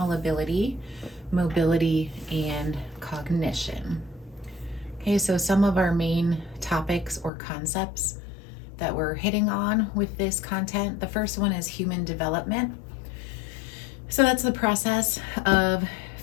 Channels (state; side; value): drops out; right; at 7.3 s